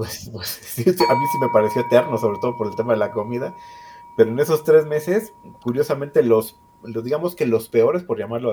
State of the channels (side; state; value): both; identical; correlation 1.00